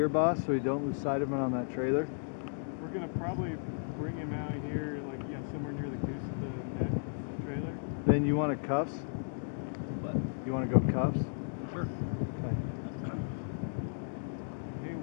boss, so you don't lose sight of him on that trailer? We're gonna probably bring him out here, like, yeah, somewhere near the goose of the neck trailer. Then you want a cuffs? What? You want to go cuffs? Sure. Okay. Hey,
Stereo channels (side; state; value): right; silent; digital silence